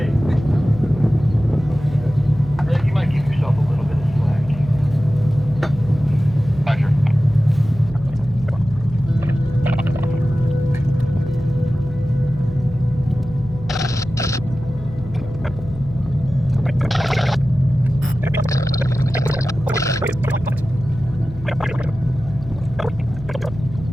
Rick, you might give yourself a little bit of slack. Roger.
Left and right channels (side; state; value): left; noise; hum, 14 dB below the sound